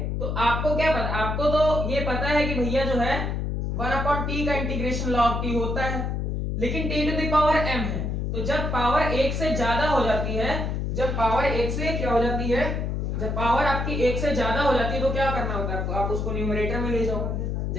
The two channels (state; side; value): noise; left; hum, 1 dB below the sound